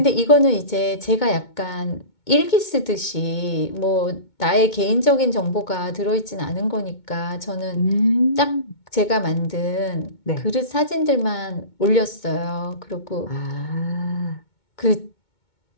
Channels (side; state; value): right; late; 2.2 ms